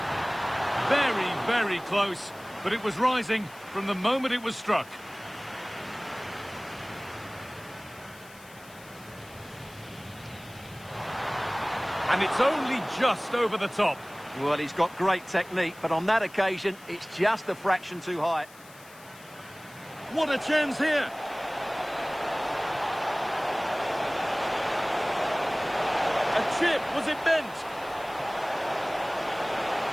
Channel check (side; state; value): left; noise; hiss, 22 dB below the sound